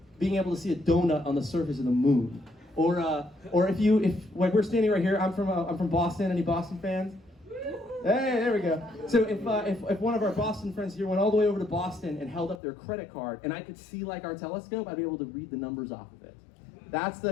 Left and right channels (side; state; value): right; drops out; at 12.6 s